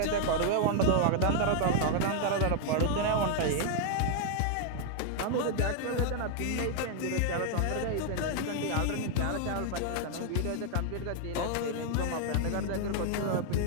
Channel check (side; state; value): both; different; correlation 0.00